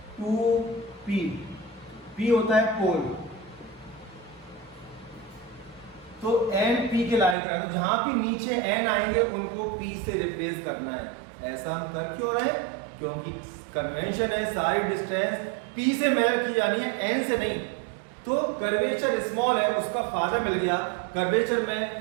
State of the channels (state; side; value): drops out; left; at 7.4 s